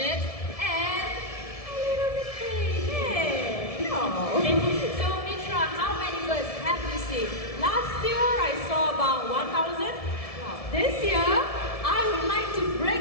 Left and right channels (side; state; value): right; late; 1.7 ms